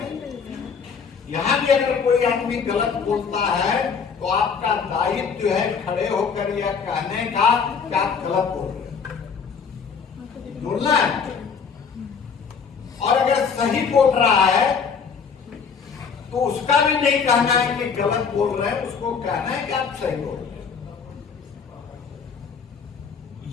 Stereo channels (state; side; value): quieter; right; 6.0 dB